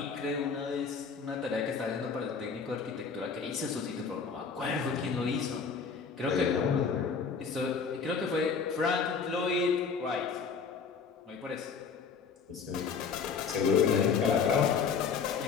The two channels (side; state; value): right; quieter; 5.7 dB